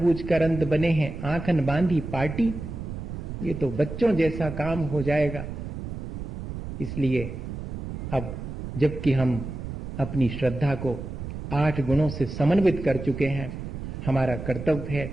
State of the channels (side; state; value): right; noise; rumble, 7 dB below the sound